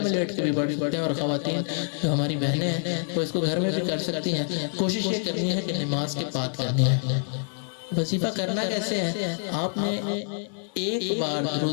میں لیٹ کے بھی پڑھ سکتے ہیں، اور خواتین جو ہماری بہنیں ہیں وہ اس کو گھر میں بھی کر سکتی ہیں۔ کوشش یہ کرنی ہے کہ نماز کے بعد کرنی ہے۔ وظیفہ کرنا کیسے ہے؟ آپ نے ایک بار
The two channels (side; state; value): right; silent; 61 dB below the other